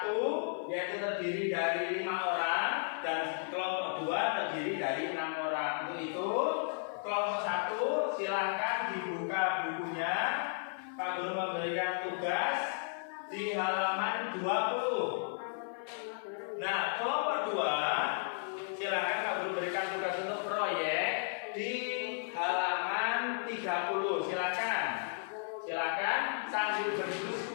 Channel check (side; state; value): right; silent; 55 dB below the other